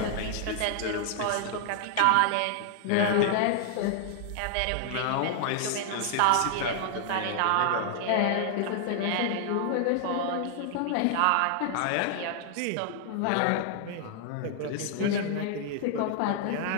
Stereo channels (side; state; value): both; different; correlation 0.00